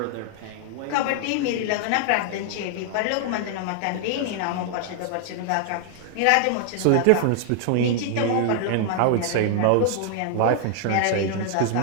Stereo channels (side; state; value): both; different; correlation 0.00